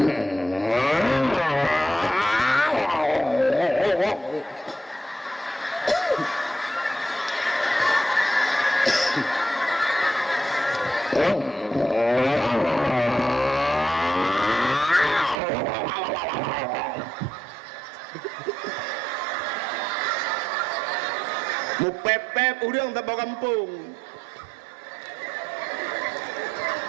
Mu pep-pep urang tak bawa kampung.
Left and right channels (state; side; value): drops out; left; at 15.4 s